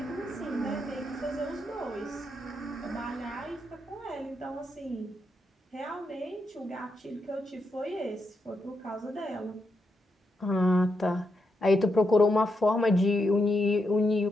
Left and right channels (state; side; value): normal; both; correlation 0.83